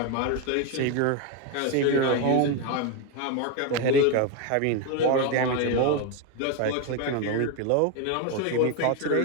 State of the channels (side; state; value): both; different; correlation 0.02